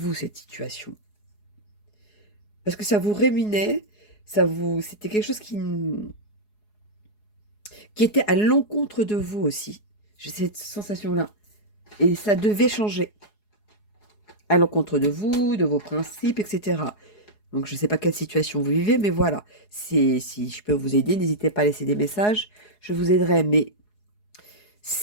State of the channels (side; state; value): right; late; 4.8 ms